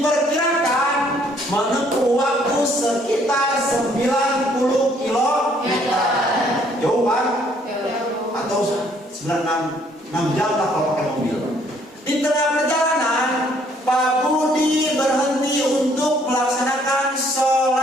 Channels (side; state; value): both; normal; correlation 0.64